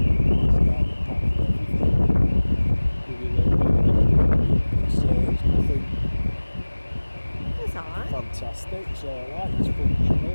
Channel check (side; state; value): both; inverted; correlation -1.00